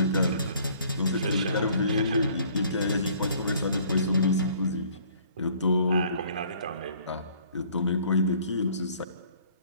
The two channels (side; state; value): both; inverted; correlation -0.57